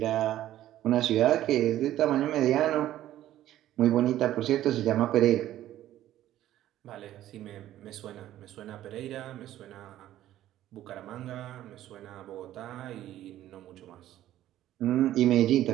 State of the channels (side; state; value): left; quieter; 13.2 dB